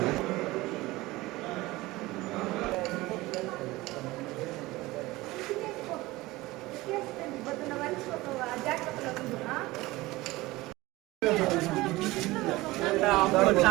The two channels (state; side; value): quieter; left; 19.7 dB